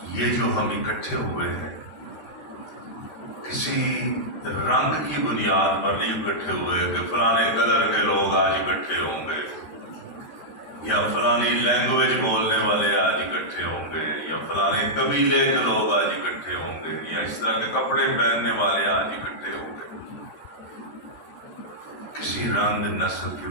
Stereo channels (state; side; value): late; right; 13 ms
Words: یہ جو ہم اکٹھے ہوئے ہیں کسی رنگ کی بنیاد پر نہیں اکٹھے ہوئے کہ فلانے کلر کے لوگ آج اکٹھے ہوں گے، یا فلانی لینگویج بولنے والے آج اکٹھے ہوں گے، یا فلانے قبیلے کے لوگ آج اکٹھے ہوں گے، یا اس طرح کے کپڑے پہننے والے آج اکٹھے ہوں گے. کسی رنگ نسل کی